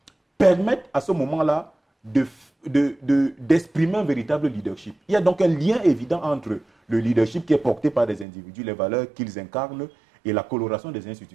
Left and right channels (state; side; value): drops out; left; at 8.2 s